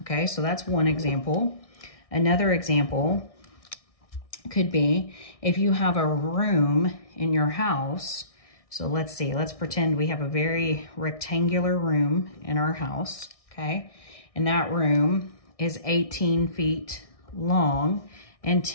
okay? So that's one example. Another example could be if you have a room in your house. So let's see, let's pretend we have a very rectangular room in our house, okay? And that room is 18 feet long and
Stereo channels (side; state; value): right; late; 1.6 ms